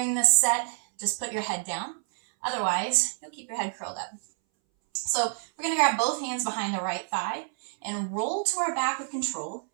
this set, just put your head down. Otherwise, you'll keep your head curled up. So we're going to grab both hands behind the right thigh and roll to our back with control.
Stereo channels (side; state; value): left; silent; 59 dB below the other